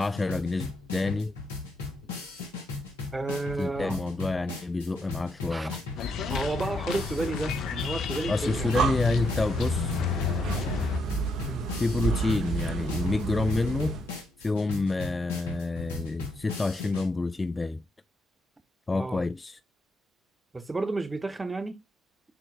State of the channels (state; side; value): normal; both; correlation 0.78